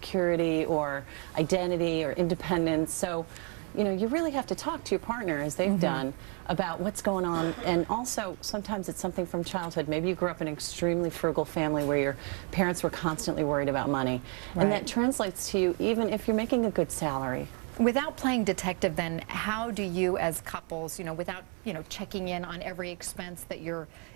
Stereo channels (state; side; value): quieter; left; 35.2 dB